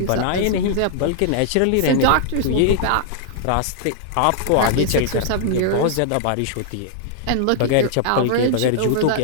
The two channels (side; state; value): both; different; correlation -0.01